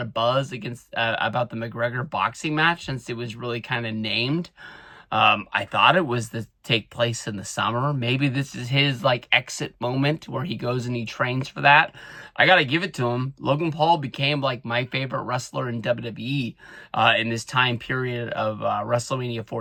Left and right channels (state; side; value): identical; both; correlation 1.00